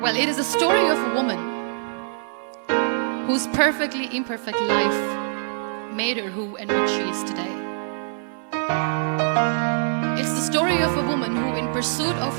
it is a story of a woman whose perfectly imperfect life made her who and what she is today. It's the story of a woman who, in pursuit of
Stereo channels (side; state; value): left; silent; 61 dB below the other